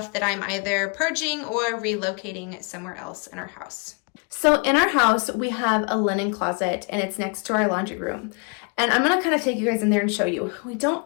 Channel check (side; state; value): right; quieter; 34.1 dB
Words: that I'm either purging or relocating somewhere else in our house. So in our house, we have a linen closet and it's next to our laundry room. And I'm gonna kind of take you guys in there and show you. We don't